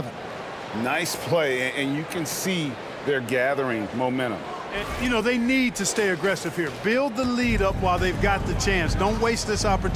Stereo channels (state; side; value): identical; both; correlation 1.00